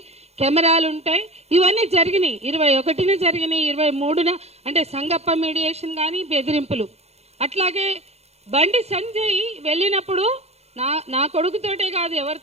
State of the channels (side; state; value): left; late; 0.31 ms